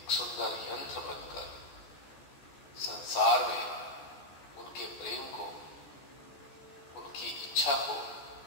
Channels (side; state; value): right; late; 14 ms